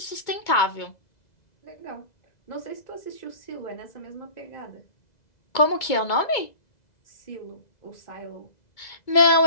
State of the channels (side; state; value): right; late; 2.2 ms